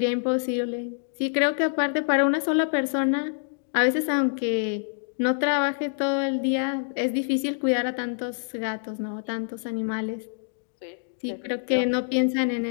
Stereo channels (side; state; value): right; silent; digital silence